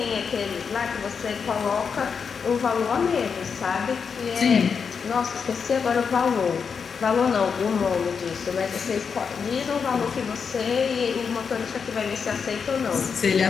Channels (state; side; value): quieter; right; 6.0 dB